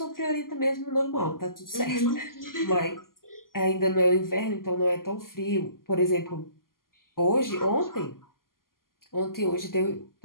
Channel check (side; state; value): right; late; 0.91 ms